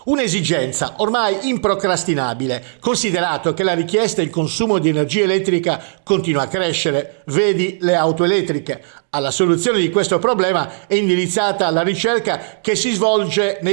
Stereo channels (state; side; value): silent; left; digital silence